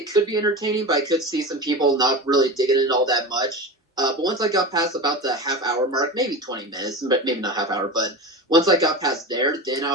could be entertaining, but I could see some people not really digging it all that much. But once I got past about the half hour mark, maybe 20 minutes, but maybe not half hour, but once I got past there, then I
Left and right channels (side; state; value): both; normal; correlation 0.28